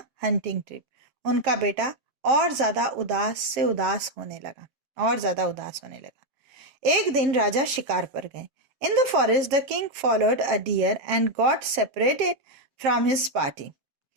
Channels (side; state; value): left; late; 7.2 ms